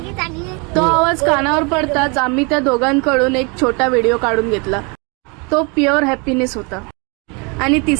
तो आवाज कानावर पडताच आम्ही त्या दोघांकडून एक छोटा व्हिडिओ काढून घेतला. तो प्युअर हॅपीनेस होता. आणि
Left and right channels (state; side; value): quieter; left; 32.0 dB